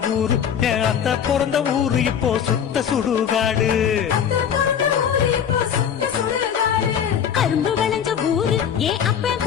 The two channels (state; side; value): quieter; right; 8.3 dB